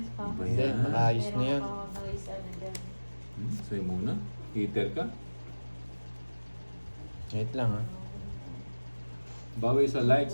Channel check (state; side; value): inverted; both; correlation -1.00